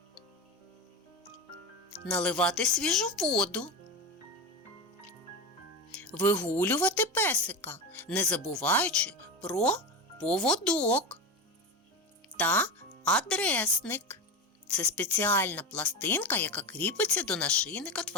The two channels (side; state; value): both; normal; correlation 0.21